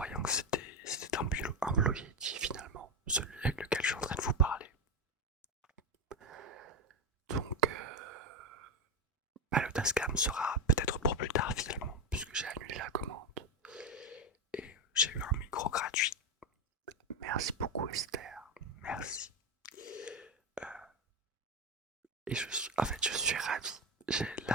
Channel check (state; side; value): normal; both; correlation 0.12